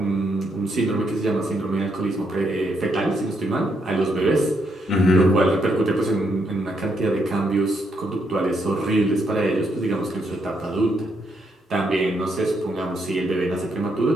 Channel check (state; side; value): normal; both; correlation 0.77